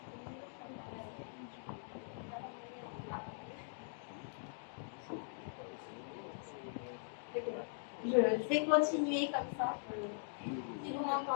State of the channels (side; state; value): right; silent; digital silence